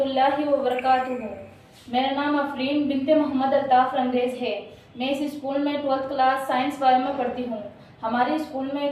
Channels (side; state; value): both; identical; correlation 1.00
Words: वबरकातुहू। मेरा नाम अफरीन बिनते मोहम्मद अल्ताफ़ रंगरेज है। मैं इस स्कूल में 12th क्लास साइंस वाले में पढ़ती हूँ। हमारे स्कूल में